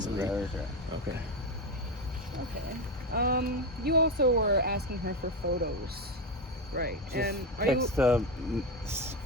Very sure. Okay. Okay. You also were asking her for photos, right? Just and are text you?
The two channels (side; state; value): both; normal; correlation 0.13